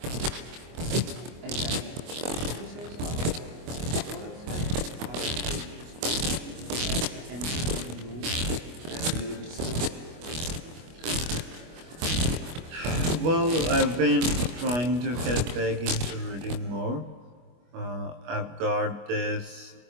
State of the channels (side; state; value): left; late; 25 ms